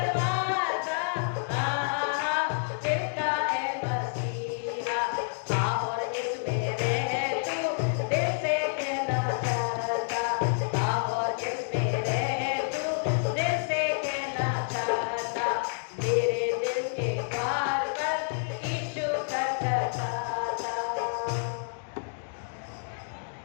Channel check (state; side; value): silent; right; digital silence